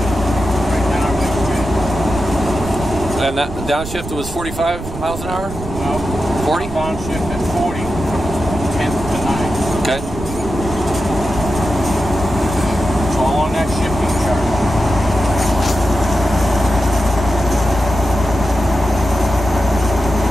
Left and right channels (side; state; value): right; noise; rumble, 10 dB below the sound